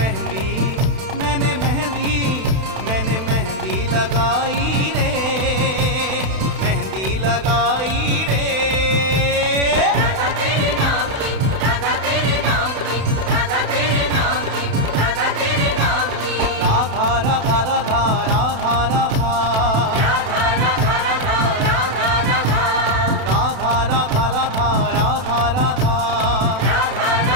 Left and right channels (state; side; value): late; left; 32 ms